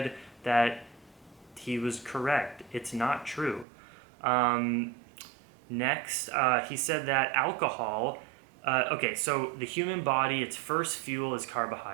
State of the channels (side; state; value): left; drops out; at 3.7 s